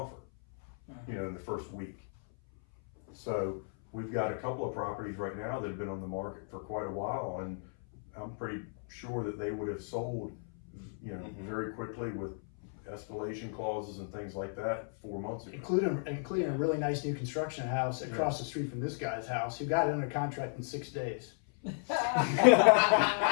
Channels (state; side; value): silent; right; 55 dB below the other